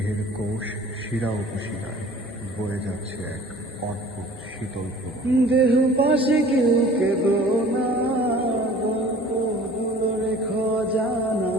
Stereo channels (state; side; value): normal; both; correlation 0.47